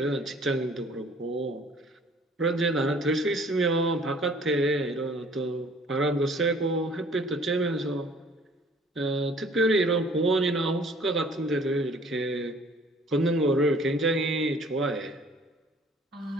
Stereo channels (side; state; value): both; normal; correlation 0.54